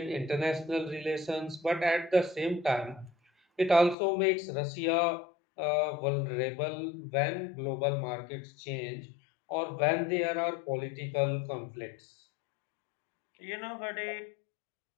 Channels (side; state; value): right; drops out; at 4.0 s